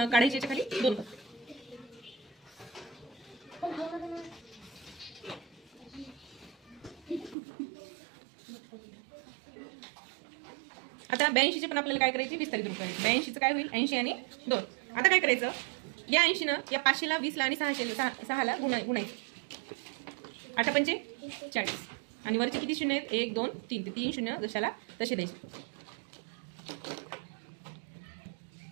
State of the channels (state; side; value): drops out; left; at 7.4 s